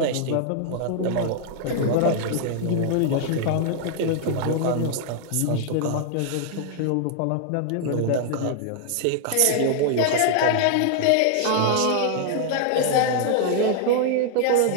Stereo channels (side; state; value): both; different; correlation 0.00